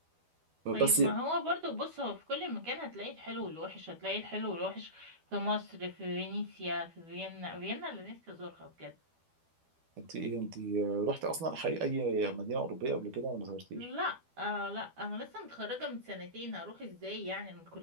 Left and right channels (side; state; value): left; late; 12 ms